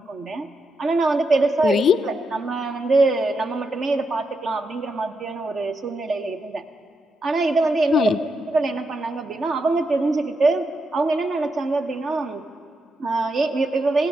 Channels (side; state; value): both; normal; correlation 0.83